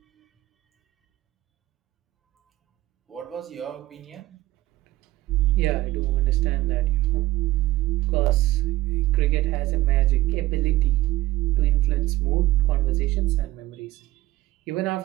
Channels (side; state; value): left; quieter; 16.8 dB